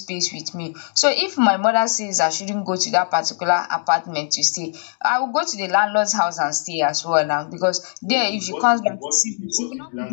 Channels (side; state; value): right; silent; 65 dB below the other